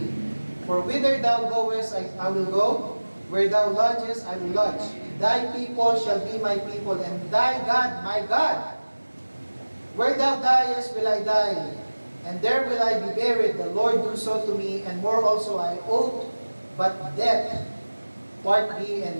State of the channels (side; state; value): both; inverted; correlation -1.00